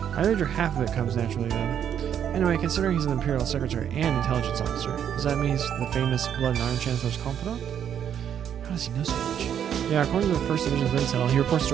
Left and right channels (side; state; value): left; quieter; 9.1 dB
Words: I wager half of it comes naturally then. Anyway, considering he's an Imperial Secretary and intelligence officer, does that mean he's the famous Blood and Iron Chancellor's confidant? How does he know so much? Yeah, according to the 1st Division's intel, he reports